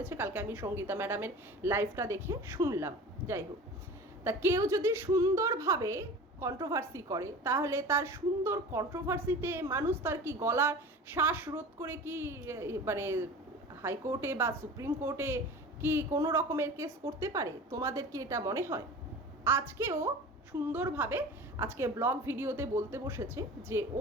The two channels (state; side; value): normal; both; correlation 0.37